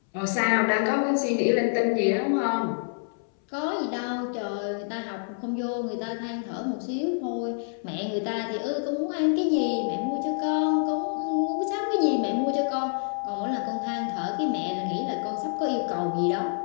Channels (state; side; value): silent; right; 59 dB below the other